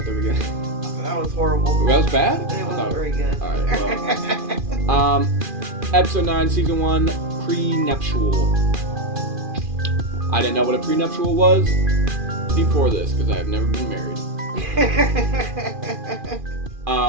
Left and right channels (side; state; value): left; late; 2.4 ms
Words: the beginning. That was horrible. That was bad? It wasn't very good. Alright, well. Episode 9, Season 1, Pre-Nuptial. I didn't know what a prenuptial was before this, because I have never been married.